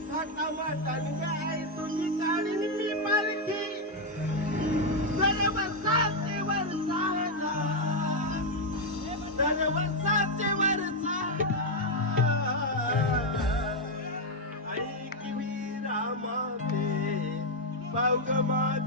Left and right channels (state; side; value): normal; both; correlation 0.02